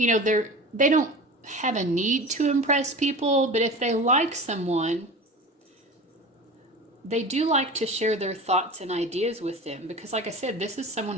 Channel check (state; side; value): normal; both; correlation 0.34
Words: know, they don't have a need to impress people, but if they like someone, they do like to share their thoughts and ideas with them because, like I said, this is